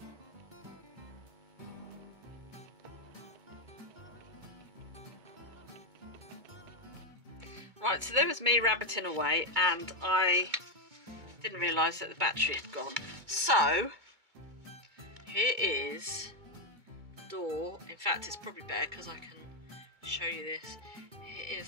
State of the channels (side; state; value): left; late; 2.2 ms